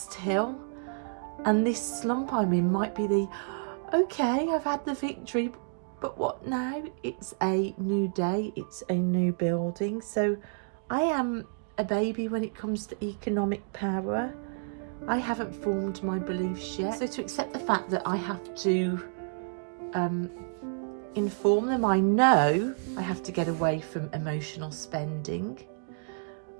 hill, and this slump I'm in might be okay, I've had the victory, but what now? It's a new day, it's a new building. So I am a baby when it comes to economic power. I haven't formed my beliefs yet. So to accept the fact that I have to inform them, I know I have to get away from emotional spending.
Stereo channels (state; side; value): silent; left; digital silence